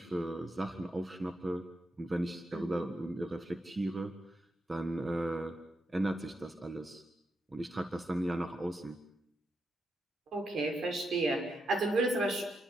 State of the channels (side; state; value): both; normal; correlation 0.83